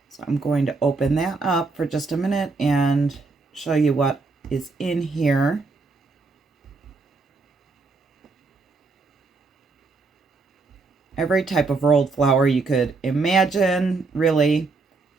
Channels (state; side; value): quieter; left; 4.1 dB